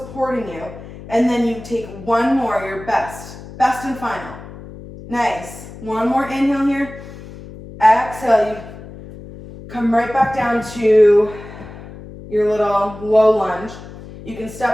you, and then you take one more, your best and final. Nice. One more inhale here. Exhale, you come right back down to your little low lunge. You can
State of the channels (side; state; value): left; noise; hum, 15 dB below the sound